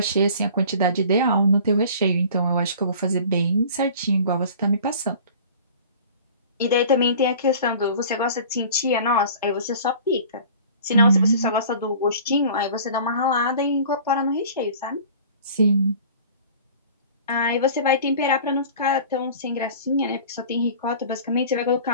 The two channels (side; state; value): both; inverted; correlation -0.44